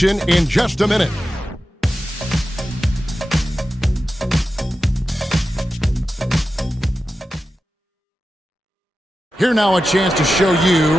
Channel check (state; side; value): normal; both; correlation 0.92